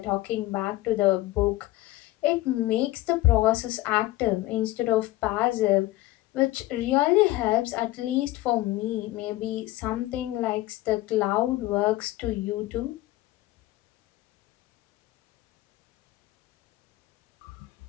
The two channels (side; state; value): right; quieter; 17.5 dB